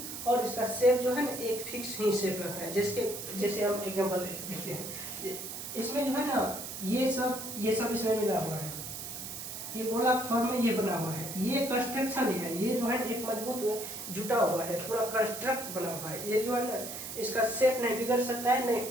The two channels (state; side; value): noise; right; hiss, 8 dB below the sound